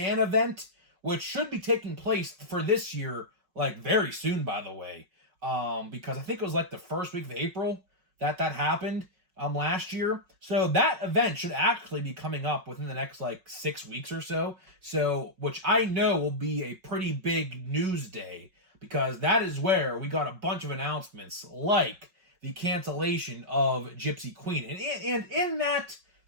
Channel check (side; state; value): left; late; 5.3 ms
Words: event, which should be taking place for this year, very soon, by the way. Because I think it was the first week of April that happened last year. So that event should actually be coming up within the next 6 weeks or so. So, which I know will be a pretty big news day, because that is where we got a bunch of announcements like the cancellation of Gypsy Queen. And in that